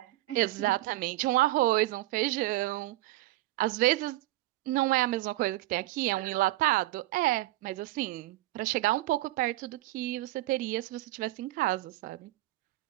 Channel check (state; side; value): quieter; left; 17.5 dB